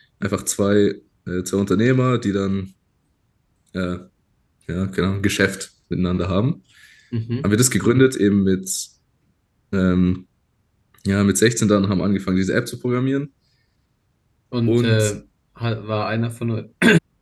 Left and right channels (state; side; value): identical; both; correlation 1.00